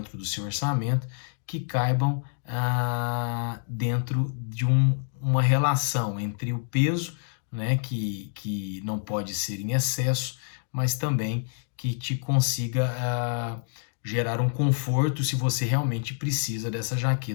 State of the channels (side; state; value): right; silent; digital silence